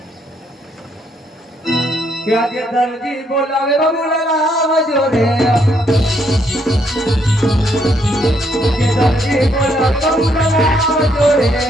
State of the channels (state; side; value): normal; both; correlation 0.72